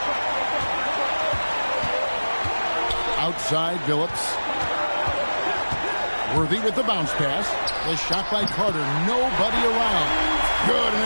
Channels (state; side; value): inverted; both; correlation -1.00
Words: Outside, Billups. Worthy with the bounce pass. The shot by Carter. Nobody around. Good,